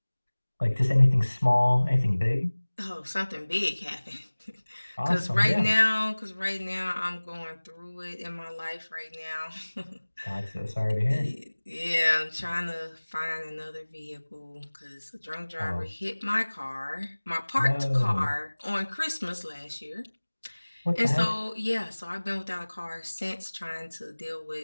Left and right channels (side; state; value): both; inverted; correlation -1.00